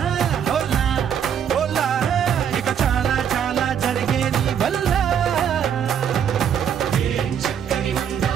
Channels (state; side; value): quieter; left; 8.4 dB